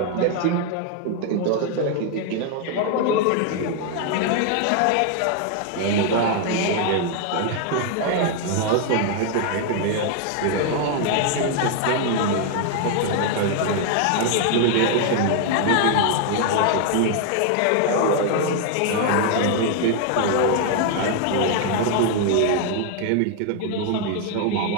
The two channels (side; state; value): both; different; correlation 0.00